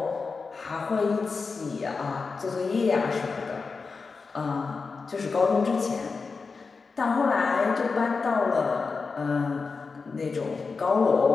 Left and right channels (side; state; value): right; quieter; 4.6 dB